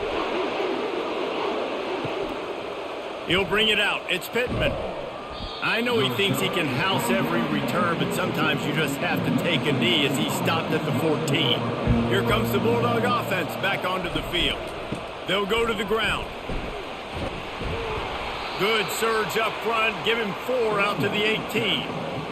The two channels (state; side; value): identical; both; correlation 1.00